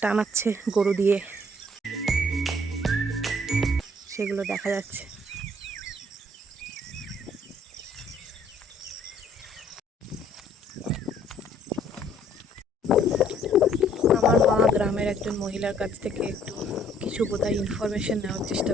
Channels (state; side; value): normal; both; correlation 0.61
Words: টানাচ্ছে গরু দিয়ে, সেগুলো দেখা যাচ্ছে। আমার মা গ্রামের একজন মহিলার কাছ থেকে একটু কিছু বোধহয় ইনফরমেশন নেওয়ার চেষ্টা